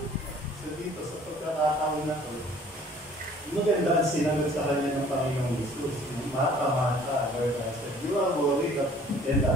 So dito sa pagkakataon na to, maganda ang sinagot sa kanya ng Panginoong Jesus. Mata-mata, Lord, I said, you are worried and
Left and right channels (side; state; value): both; normal; correlation 0.53